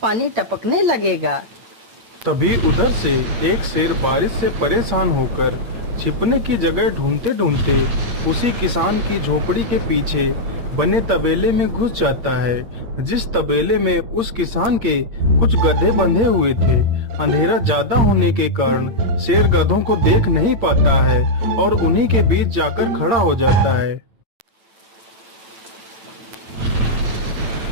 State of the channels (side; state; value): left; late; 9.0 ms